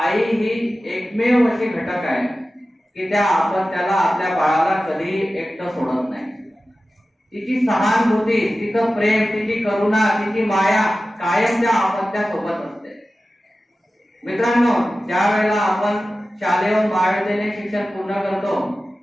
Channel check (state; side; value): normal; both; correlation 0.95